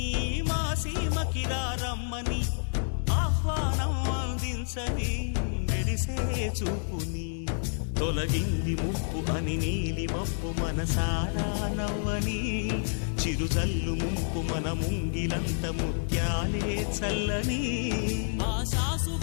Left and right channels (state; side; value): silent; right; digital silence